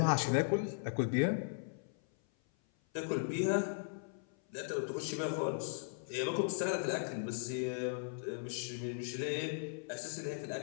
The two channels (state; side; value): silent; right; 53 dB below the other